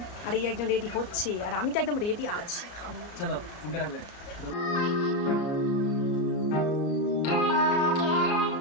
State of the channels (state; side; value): late; right; 34 ms